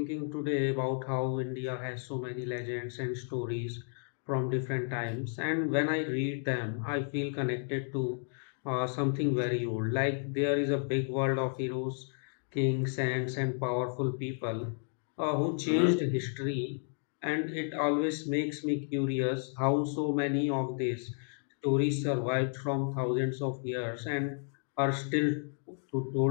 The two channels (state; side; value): silent; right; 56 dB below the other